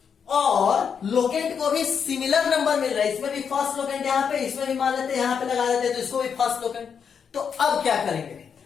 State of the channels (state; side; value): quieter; right; 6.9 dB